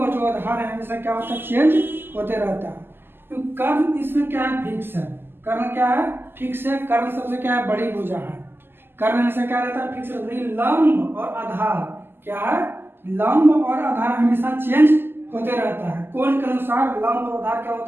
जो आधार है हमेशा क्या होता है? चेंज होते रहता है। तो कर्ण इसमें क्या है? फिक्स है। कर्ण क्या है? फिक्स है। कर्ण सबसे क्या है? बड़ी भुजा है। कर्ण हमेशा क्या रहता है? फिक्स रहता है। लंब और आधार क्या है? लंब और आधार हमेशा चेंज होते रहता है। कोण के अनुसार लंब और आधार क्या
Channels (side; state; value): left; late; 0.10 ms